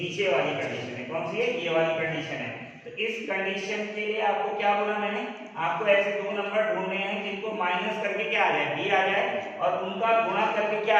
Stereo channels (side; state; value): both; identical; correlation 1.00